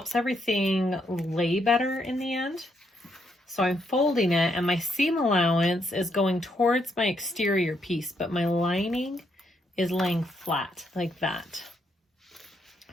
everything lay better in the end. So I'm folding it and my seam allowance is going towards my exterior piece, but my lining is laying flat like that.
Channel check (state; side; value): normal; both; correlation 0.76